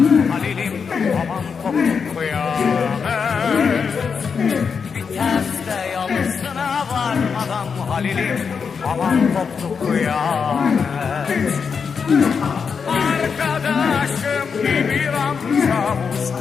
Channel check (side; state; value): right; quieter; 6.0 dB